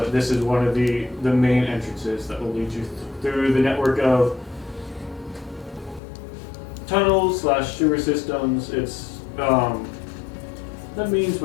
this is one of the main entrances that will lead you through the network of tunnels / sewer systems. It's the means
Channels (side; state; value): right; drops out; at 6.0 s